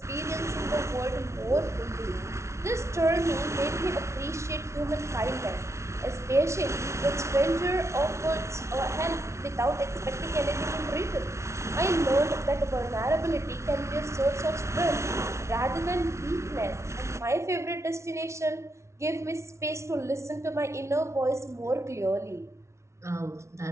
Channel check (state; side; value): late; left; 0.13 ms